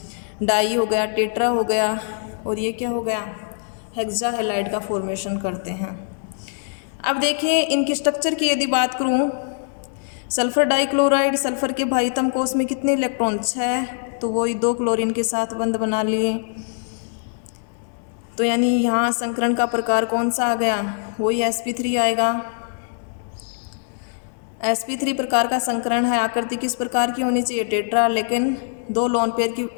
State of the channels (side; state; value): right; silent; digital silence